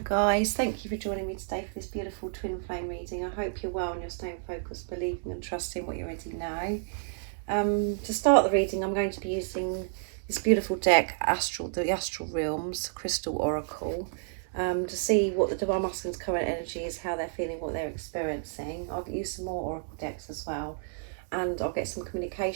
thank you for joining me today for this beautiful twin flame reading. I hope you're well and you're staying focused, believing and trusting what you already know. To start the reading, I'm going to be using this beautiful deck, the Astral Realms Crystal Oracle, to see what the Divine Masculine's current energy is, how they're feeling, what they're experiencing. I'll use some more Oracle decks as well, and I'll get some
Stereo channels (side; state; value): left; silent; 58 dB below the other